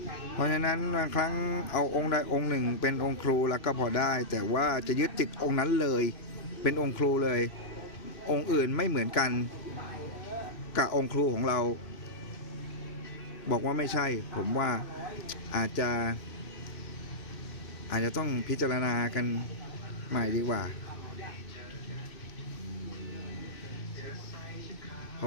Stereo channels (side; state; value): right; late; 2.6 ms